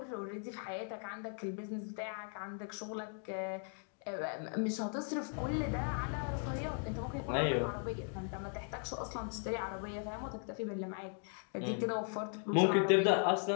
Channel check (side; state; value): right; silent; 52 dB below the other